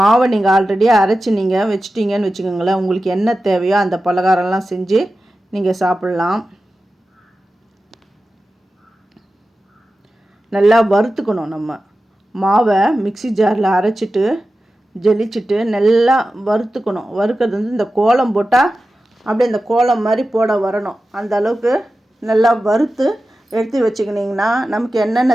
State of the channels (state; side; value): normal; both; correlation 0.93